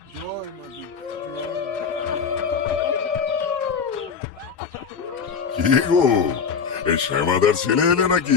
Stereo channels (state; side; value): quieter; right; 6.1 dB